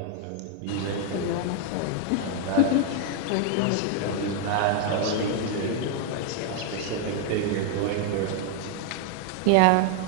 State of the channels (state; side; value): different; both; correlation 0.00